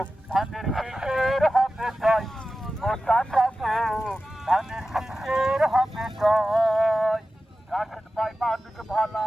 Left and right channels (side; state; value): both; normal; correlation 0.94